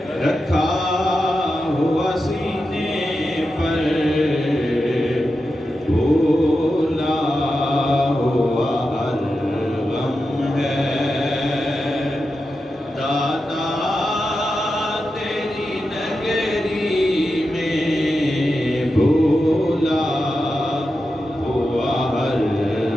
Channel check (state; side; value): normal; both; correlation 0.90